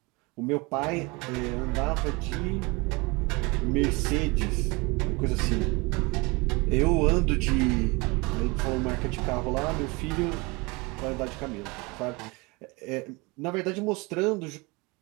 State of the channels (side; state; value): left; quieter; 26.3 dB